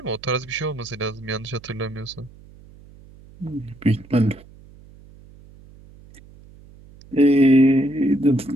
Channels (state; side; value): noise; right; hum, 23 dB below the sound